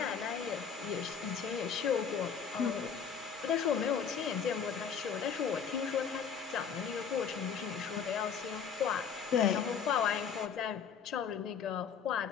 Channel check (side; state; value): right; quieter; 6.9 dB